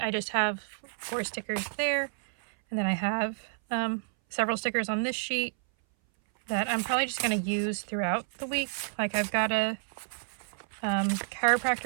I just have 4 stickers there. And then I have several stickers on this sheet that I'm probably just going to use throughout the week. Like I've got a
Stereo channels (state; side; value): silent; left; 58 dB below the other